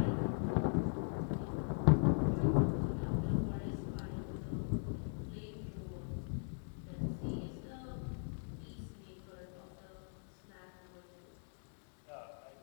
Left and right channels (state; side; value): silent; right; digital silence